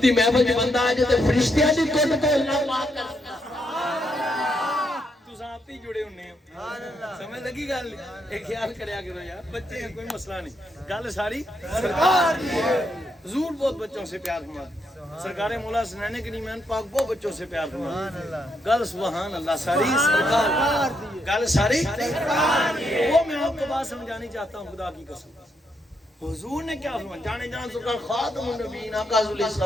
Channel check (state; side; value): normal; both; correlation 0.78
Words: دی محفل جو بندہ آ جائے فرشتیاں دی کٹ تو اللہ پاک کرتا. تساں آپ ہی جڑے ہونے ہو. سمجھ لگی گل. ایک خیال کریا کرو یار بچے ہیں کوئی مسئلہ نہیں. گل ساری سرکار دی ہے. حضور بہت بچوں سے پیار فرماتے. سرکار مولا حسنین کریمین پاک بہت بچوں سے پیار فرماتے. گل سبحان اللہ ساری سرکار گل ساری. وہ میں آپ کو بات سمجھانی چاہتا ہوں خدا کی قسم. حضور نے کیا فرمایا؟ جانے جان سکر خاتم النبیین آقا صلی اللہ